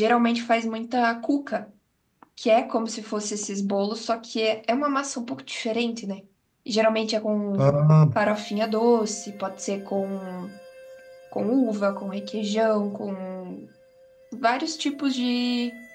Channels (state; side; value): identical; both; correlation 1.00